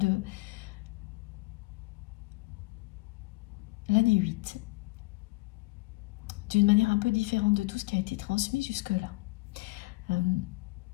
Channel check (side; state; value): right; quieter; 23.3 dB